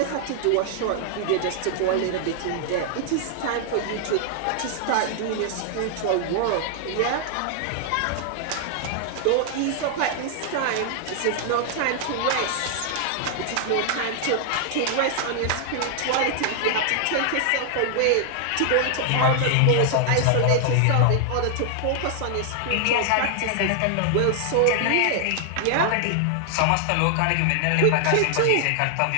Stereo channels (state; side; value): different; both; correlation 0.00